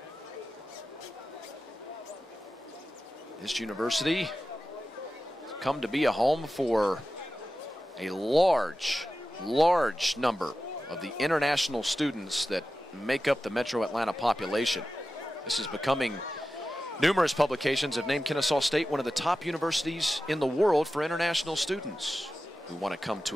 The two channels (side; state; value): both; normal; correlation 0.93